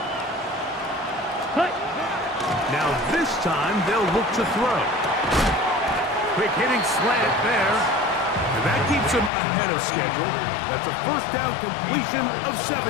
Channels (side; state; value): right; drops out; at 9.3 s